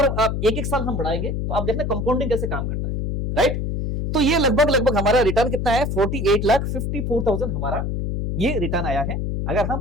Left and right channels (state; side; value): noise; left; hum, 2 dB below the sound